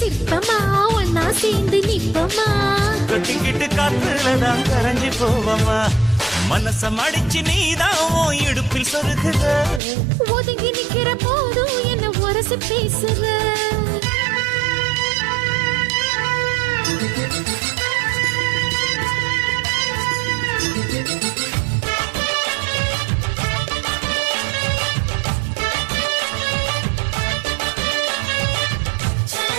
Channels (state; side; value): drops out; left; at 9.8 s